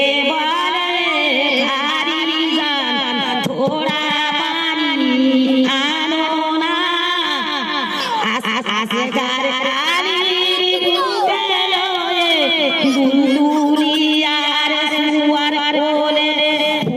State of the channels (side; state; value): both; identical; correlation 1.00